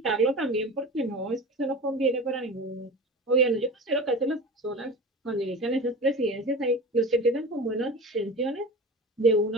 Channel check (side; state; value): both; normal; correlation 0.33